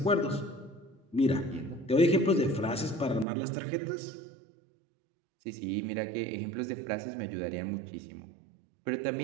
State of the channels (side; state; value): left; drops out; at 3.2 s